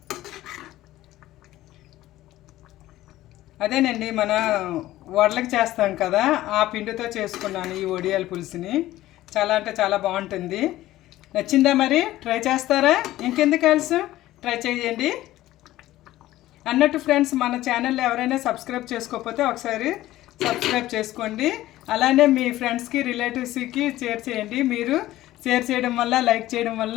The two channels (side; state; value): right; quieter; 15.5 dB